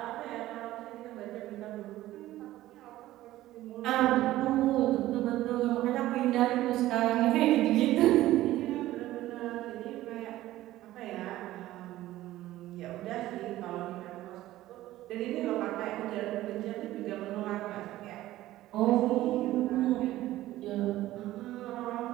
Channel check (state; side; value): quieter; left; 15.4 dB